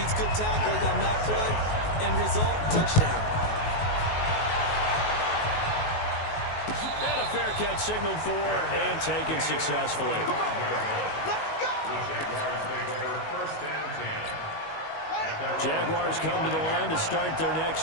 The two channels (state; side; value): late; right; 19 ms